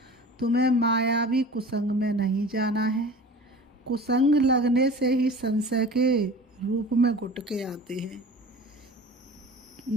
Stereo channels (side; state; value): both; normal; correlation 0.39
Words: तुम्हें मायावी कुसंग में नहीं जाना है। कुसंग लगने से ही संशय के रूप में गुटके आते हैं।